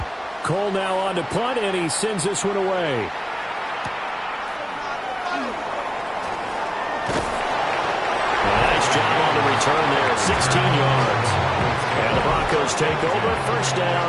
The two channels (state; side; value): identical; both; correlation 1.00